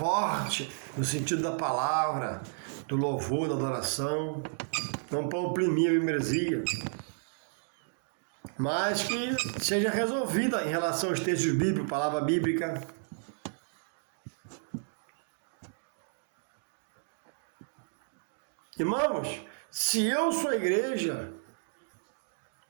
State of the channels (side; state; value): left; silent; digital silence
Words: no sentido da palavra, do louvor, da adoração, não para oprimir a membresia, mas que seja resolvida em relação aos textos bíblicos, palavra bíblica. Irmãos, se eu sou a igreja,